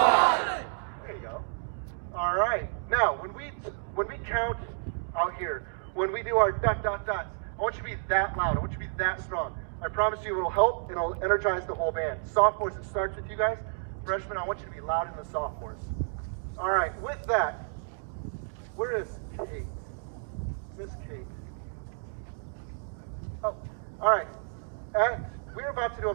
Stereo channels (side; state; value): left; silent; digital silence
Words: There you go. All right. Now, when we count out here, when we do our dot dot dots, I want you to be that loud. I want you to be that strong. I promise you it'll help. It'll energize the whole band. Sophomores, it starts with you guys. Freshmen, I want you to be loud in the sophomores. All right. With that, where is Kate? Miss Kate. Oh, all right. We're about to do a